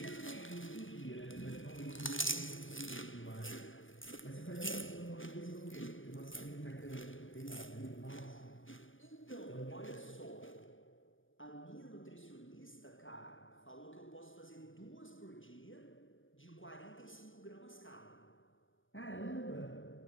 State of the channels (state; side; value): late; right; 0.57 ms